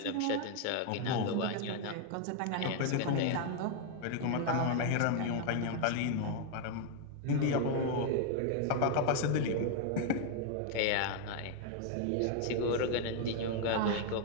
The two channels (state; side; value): different; both; correlation 0.00